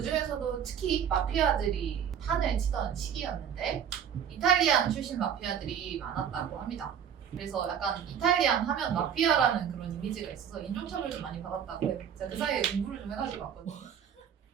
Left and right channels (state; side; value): quieter; left; 8.5 dB